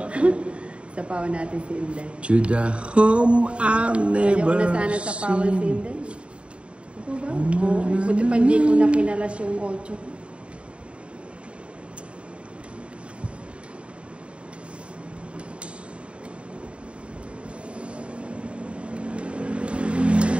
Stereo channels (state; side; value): late; left; 0.059 ms